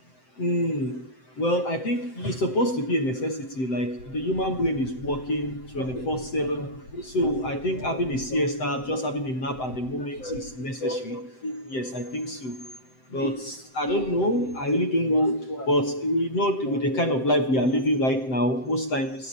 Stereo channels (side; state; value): right; late; 7.8 ms